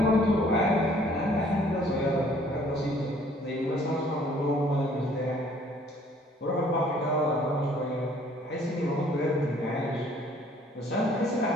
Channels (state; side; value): normal; both; correlation 0.58